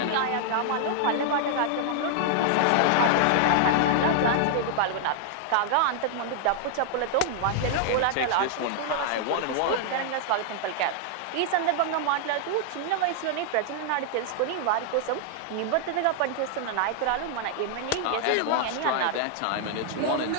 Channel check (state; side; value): different; both; correlation -0.01